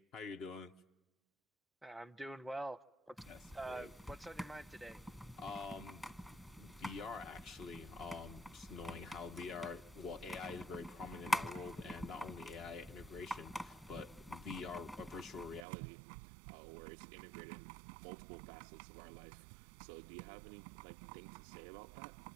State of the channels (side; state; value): left; drops out; at 15.7 s